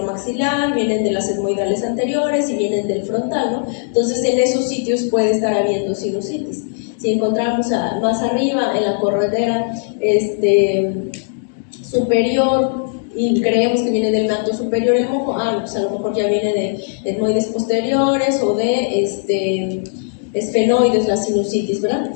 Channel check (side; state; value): right; silent; digital silence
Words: maxilar, vienen de las etmoidales anteriores y vienen del frontal, ¿no? Entonces en esos sitios puede estar habiendo sinusitis. Si encontramos más arriba en la corredera superior y creemos que viene del meato superior el moco, pues a lo mejor ya viene de etmoides posteriores o de esfenoides, la sinusitis, ¿verdad?